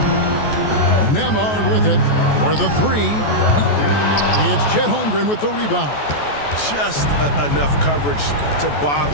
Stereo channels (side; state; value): right; late; 14 ms